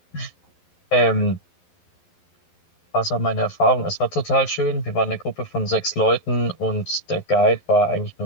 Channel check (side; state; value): right; late; 11 ms